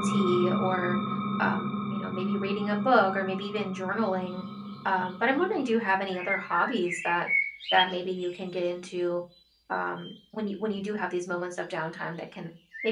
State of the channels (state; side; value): identical; both; correlation 1.00